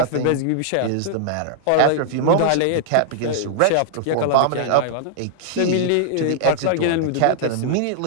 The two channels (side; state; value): both; different; correlation -0.01